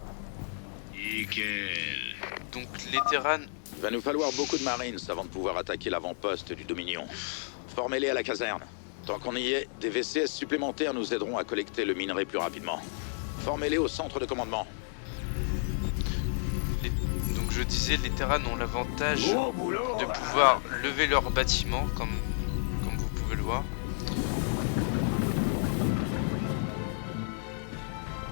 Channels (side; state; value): right; silent; digital silence